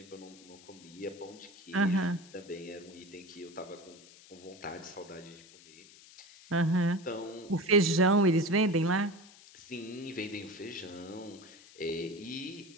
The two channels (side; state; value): left; noise; hiss, 22 dB below the sound